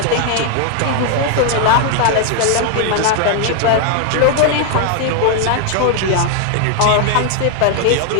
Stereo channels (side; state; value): both; different; correlation 0.00